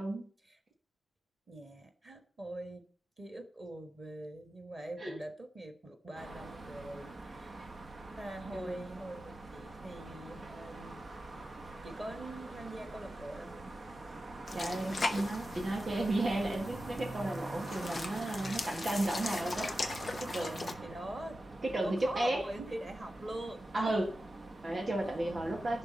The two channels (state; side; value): normal; both; correlation 0.92